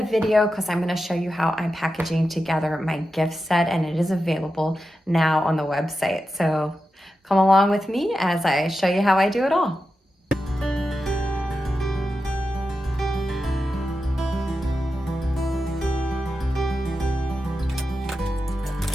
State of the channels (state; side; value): normal; both; correlation 0.90